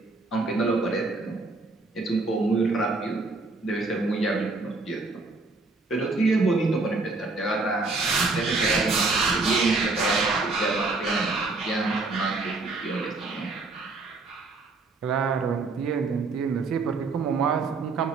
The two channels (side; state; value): left; quieter; 3.6 dB